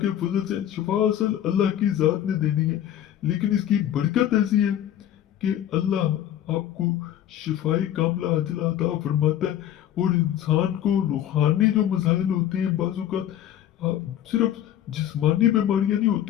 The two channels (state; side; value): quieter; right; 11.4 dB